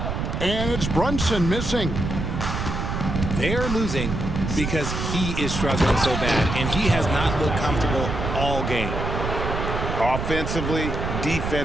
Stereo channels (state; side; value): noise; right; rumble, 3 dB below the sound